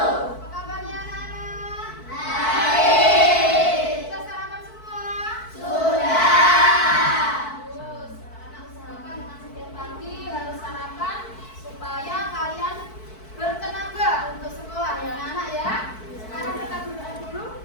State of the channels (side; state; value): right; late; 4.6 ms